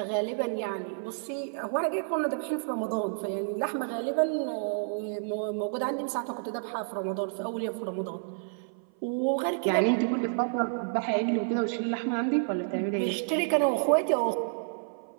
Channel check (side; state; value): left; silent; 55 dB below the other